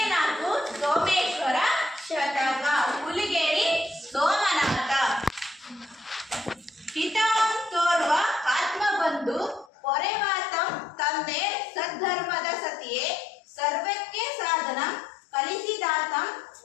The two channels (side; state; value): right; drops out; at 9.7 s